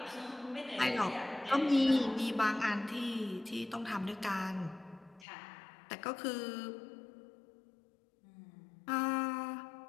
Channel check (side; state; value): right; drops out; at 5.2 s